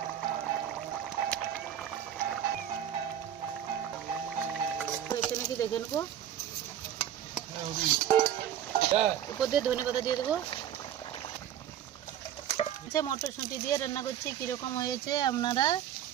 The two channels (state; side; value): quieter; left; 10.5 dB